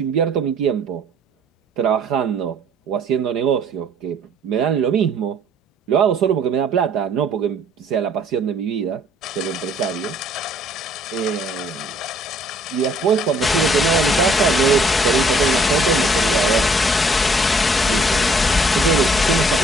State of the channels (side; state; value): both; normal; correlation 0.61